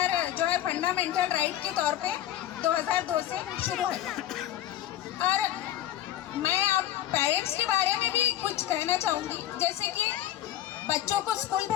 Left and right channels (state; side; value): quieter; right; 12.6 dB